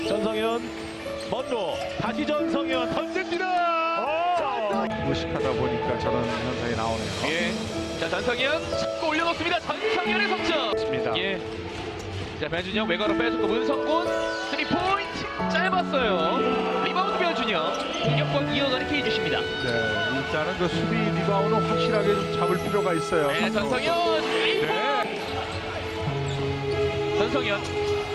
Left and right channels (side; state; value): both; identical; correlation 1.00